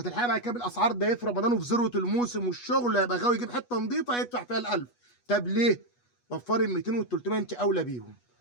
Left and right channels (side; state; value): right; late; 8.2 ms